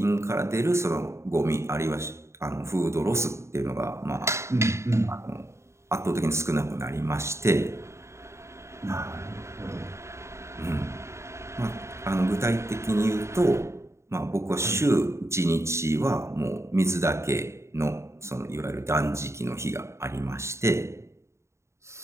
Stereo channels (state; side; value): late; left; 0.14 ms